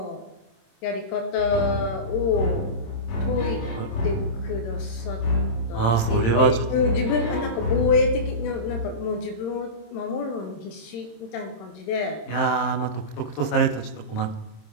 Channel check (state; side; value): late; right; 26 ms